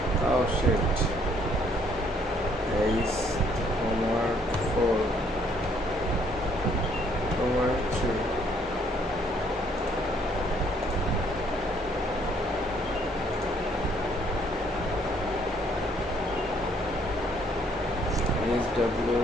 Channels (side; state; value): both; normal; correlation 0.65